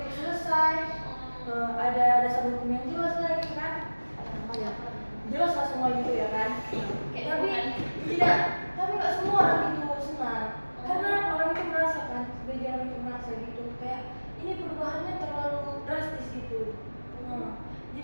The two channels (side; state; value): both; inverted; correlation -1.00